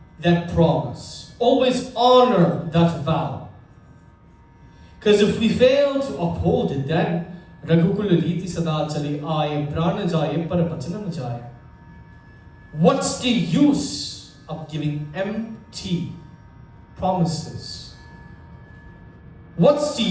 that promise, always honor that vow. Because if we fail to uphold it, then Raghukul Riti Sada Chali Aaye Prana Jaye Par Vachana Na Jaye. What's the use of giving empty promises? What's the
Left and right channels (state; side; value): identical; both; correlation 1.00